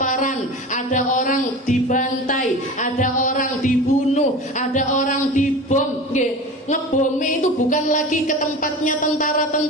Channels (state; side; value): normal; both; correlation 0.33